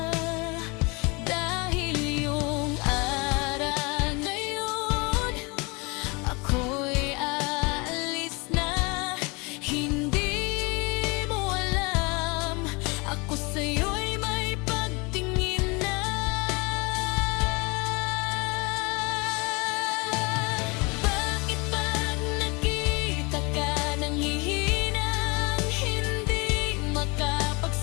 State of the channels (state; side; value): quieter; right; 28.3 dB